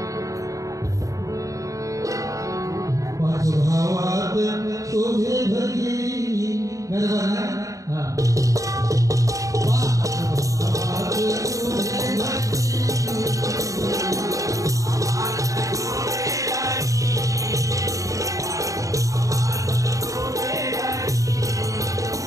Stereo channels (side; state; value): left; late; 0.16 ms